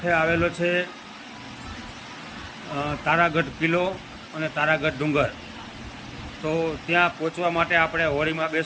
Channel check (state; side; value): identical; both; correlation 1.00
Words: આવેલો છે તારાગઢ કિલ્લો અને તારાગઢ ડુંગર. તો ત્યાં પહોંચવા માટે આપણે હોળીમાં